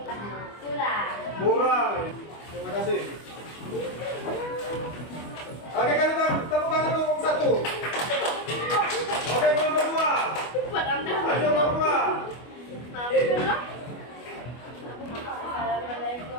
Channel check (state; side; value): late; right; 25 ms